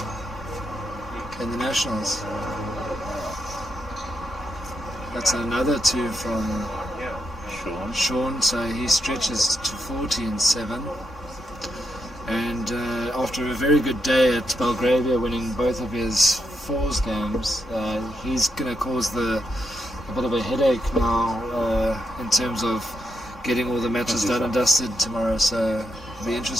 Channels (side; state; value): both; normal; correlation 0.82